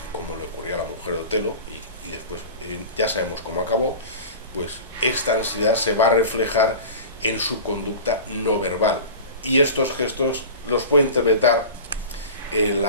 como le ocurrió a la mujer de Otelo, y después ya sabemos cómo acabó. Pues esta ansiedad se va a reflejar en su conducta no verbal, y estos gestos los puede interpretar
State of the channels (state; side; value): inverted; both; correlation -0.34